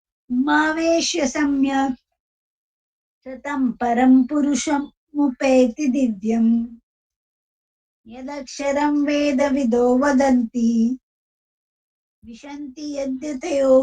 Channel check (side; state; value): both; identical; correlation 1.00